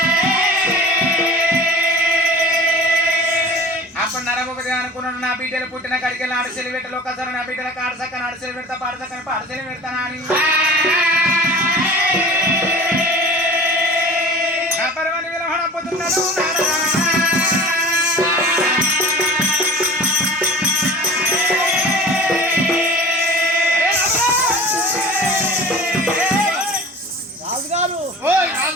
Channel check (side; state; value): both; normal; correlation 0.40